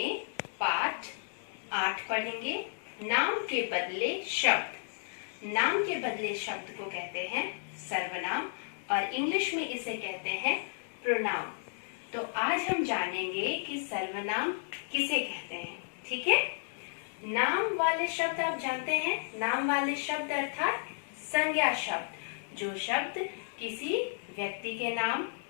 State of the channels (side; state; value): right; silent; digital silence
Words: पाठ 8 पढ़ेंगे। नाम के बदले शब्द। नाम के बदले शब्द को कहते हैं सर्वनाम और इंग्लिश में इसे कहते हैं प्रोनाउन। तो आज हम जानेंगे कि सर्वनाम किसे कहते हैं। ठीक है, नाम वाले शब्द आप जानते हैं। नाम वाले शब्द अर्थात संज्ञा शब्द, जो शब्द किसी व्यक्ति के नाम,